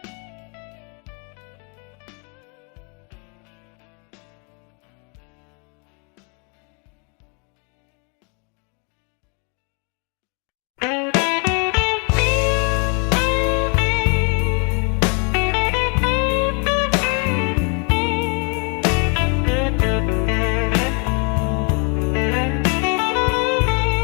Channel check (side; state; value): right; quieter; 36.2 dB